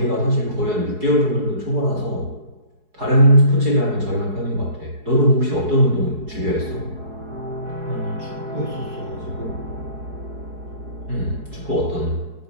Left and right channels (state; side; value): late; left; 4.7 ms